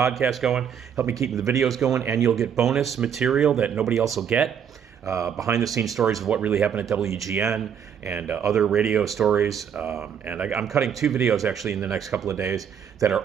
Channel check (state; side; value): quieter; left; 8.0 dB